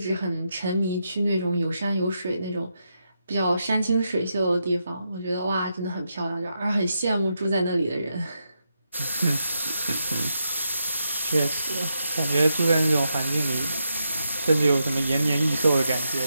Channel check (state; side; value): inverted; both; correlation -0.84